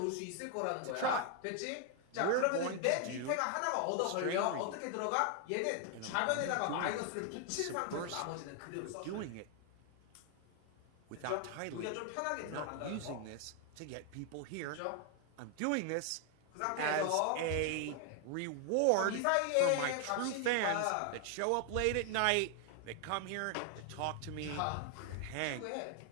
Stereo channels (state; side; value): different; both; correlation 0.00